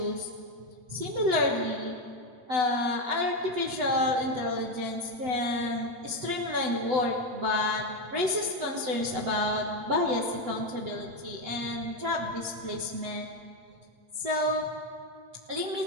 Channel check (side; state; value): left; late; 8.0 ms